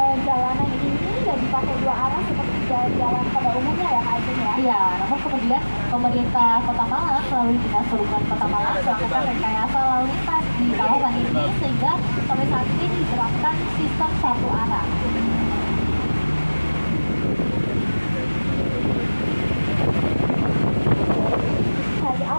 jalanan ini nggak dipakai dua arah seperti jalan pada umumnya ya, Kak Ajeng ya? Iya, namun kemudian pemerintah Kota Malang melalui Dinas Perhubungan Kota Malang melakukan rekayasa lalu lintas di kawasan ini sehingga sampai saat ini diterapkan sistem satu arah. Hari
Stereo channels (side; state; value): both; inverted; correlation -1.00